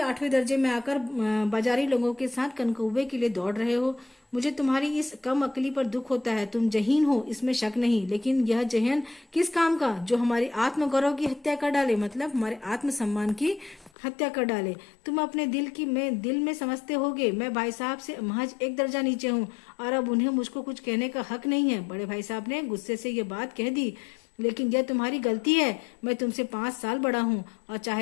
दर्जे में आकर बाजारी लोगों के साथ कनकौवे के लिए दौड़ रहे हो। मुझे तुम्हारी इस कम अकली पर दुख होता है। तुम जहीन हो, इसमें शक नहीं, लेकिन यह जहन किस काम का, जो हमारी आत्मगौरव की हत्या कर डाले, मतलब हमारे आत्मसम्मान की हत्या कर डाले। तुम अपने दिल में समझते होगे मैं भाई साहब से महज एक दर्जा नीचे हूँ और अब उन्हें मुझको कुछ कहने का हक नहीं है। बड़े भाई साहब ने गुस्से से ये बात कह दी। लेकिन यह तुम्हारी गलती है। मैं तुमसे 5 साल बड़ा हूँ और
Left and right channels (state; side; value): drops out; right; at 13.9 s